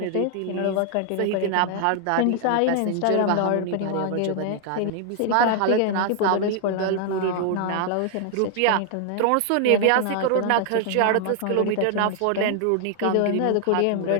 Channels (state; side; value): different; both; correlation 0.00